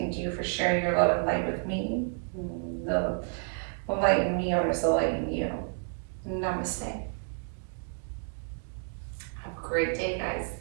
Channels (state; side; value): silent; left; 58 dB below the other